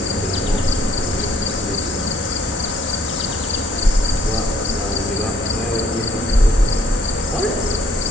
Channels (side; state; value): both; normal; correlation 0.64